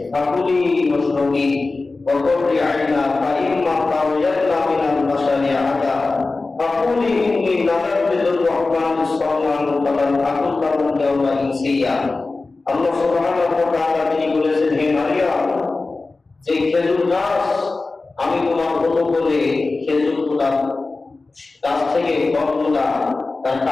ফাকুলি ওয়াশরাবি ওয়া কুররি আইনা ফাইম্মা তাওয়াজ্জালনা মিনাল বাশারি আদা ফাকুলি ইন্নী নাযারতু লির-রাহমানি সাওমান ফালান আকুল লাহুম ইয়াওমা ইনসিয়া। আল্লাহ সুবহানাহু ওয়া তাআলা তিনি বলেছেন, হে মারিয়াম, যে খেজুর গাছ আমি তোমার হতো বলে খেজুরগুলা গাছ থেকে ফলগুলা তার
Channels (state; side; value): quieter; right; 3.6 dB